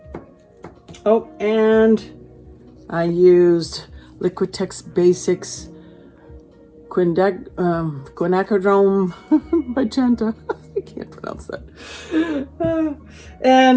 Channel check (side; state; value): both; identical; correlation 1.00